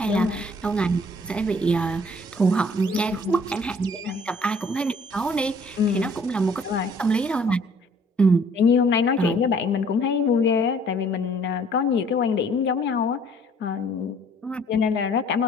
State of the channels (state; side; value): normal; both; correlation 0.57